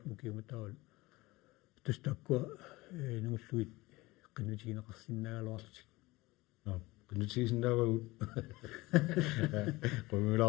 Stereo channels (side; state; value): right; quieter; 20.9 dB